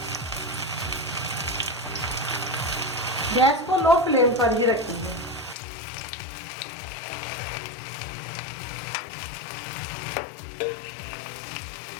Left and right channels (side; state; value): right; drops out; at 5.6 s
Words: गैस को लो फ्लेम पर ही रखेंगे।